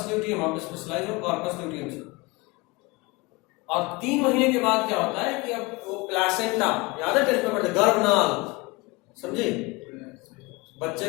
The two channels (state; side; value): quieter; right; 24.8 dB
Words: ल्यूटियम, आप स्पेशलाइज हो कॉर्पस ल्यूटियम से। और 3 महीने के बाद क्या होता है कि अब वो प्लासेंटा, याद है टेस्ट में पढ़ते, गर्भनाल, समझे, बच्चे